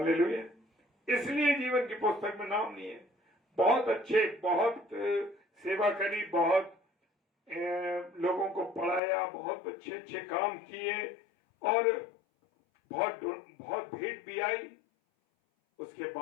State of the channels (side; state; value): right; drops out; at 9.0 s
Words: इसलिए जीवन की पुस्तक में नाम नहीं है। बहुत अच्छे, बहुत सेवा करी, बहुत लोगों को पढ़ाया, बहुत अच्छे अच्छे काम किए और बहुत भेंट भी आई। उसके